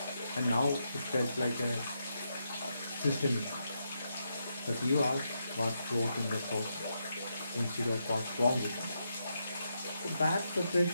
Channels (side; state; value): both; inverted; correlation -0.82